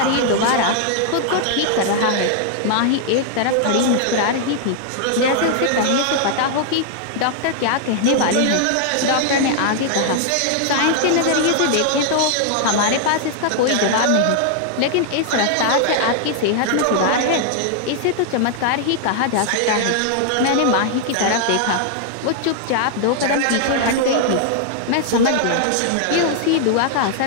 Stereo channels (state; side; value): different; both; correlation 0.00